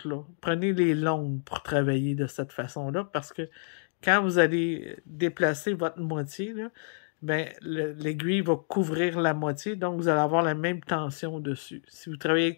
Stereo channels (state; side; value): silent; right; digital silence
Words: là. Prenez les longues pour travailler de cette façon-là, parce que quand vous allez déplacer votre moitié, là, ben, l'aiguille va couvrir la moitié, donc vous allez avoir la même tension dessus. Si vous travaillez